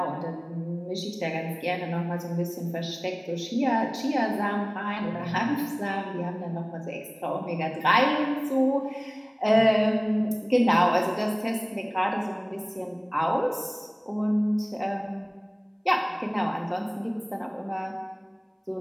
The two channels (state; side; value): identical; both; correlation 1.00